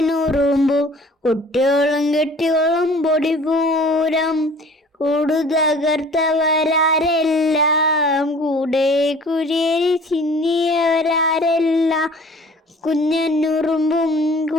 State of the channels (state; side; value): normal; both; correlation 0.49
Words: കുട്ടിയോളും കെട്ടിയോളും പൊടിപൂരം. കൂടു തകർത്തവരാരെല്ലാം കൂടെ കുരിയരി ചിന്നിയവരാരെല്ലാം. കുഞ്ഞനുറുമ്പും